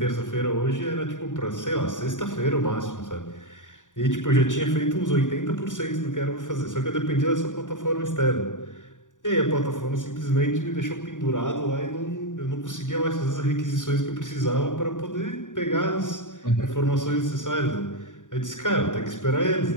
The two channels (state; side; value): late; right; 0.87 ms